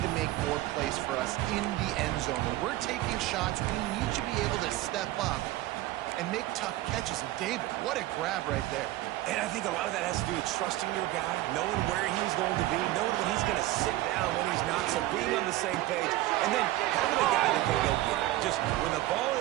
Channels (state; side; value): quieter; left; 16.4 dB